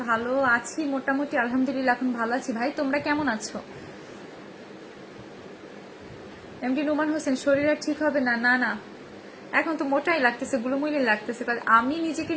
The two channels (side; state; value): both; identical; correlation 1.00